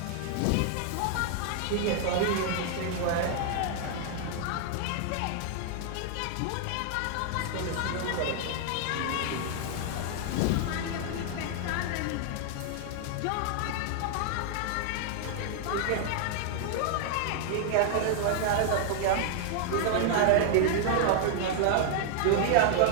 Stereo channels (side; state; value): both; different; correlation 0.00